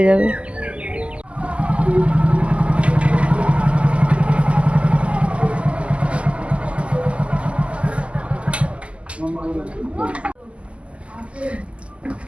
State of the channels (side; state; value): left; late; 0.058 ms